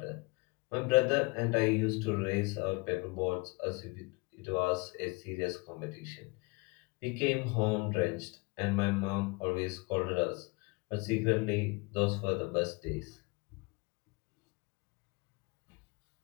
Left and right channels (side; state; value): right; quieter; 27.7 dB